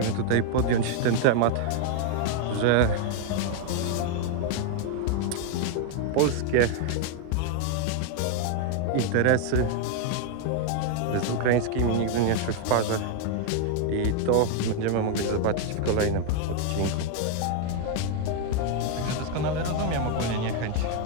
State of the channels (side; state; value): both; different; correlation 0.00